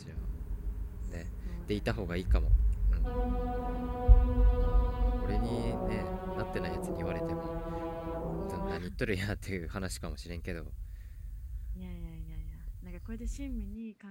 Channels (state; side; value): identical; both; correlation 1.00